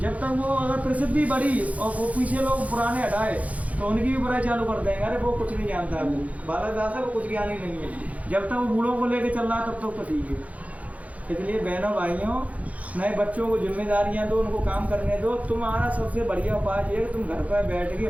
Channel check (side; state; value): left; late; 0.069 ms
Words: जब तक वो अगर प्रसिद्धि बढ़ी और वो पीछे लोग पुराने हटाए तो उनकी भी बुराई चालू कर देंगे, अरे वो कुछ नहीं जानता है, वो बालक दास है, वो कुछ ज्ञान ही नहीं है। जब तक वो बूढ़ों को लेके चल रहा है तब तक तो ठीक है। इसलिए बहनों भाइयों नए बच्चों को जिम्मेदारियां दो, उनको काम करने दो। तुम्हारा सबसे बढ़िया उपाय ये है कि तुम घर पर बैठ के